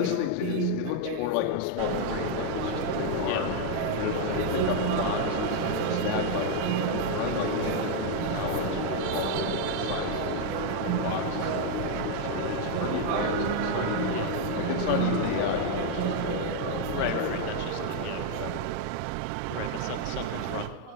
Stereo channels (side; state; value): both; different; correlation 0.01